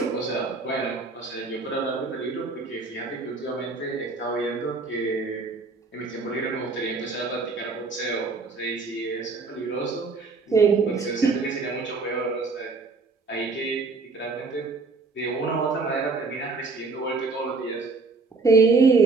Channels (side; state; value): left; quieter; 4.1 dB